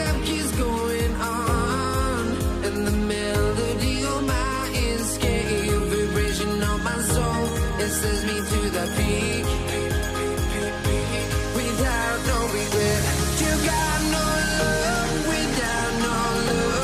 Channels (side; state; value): both; identical; correlation 1.00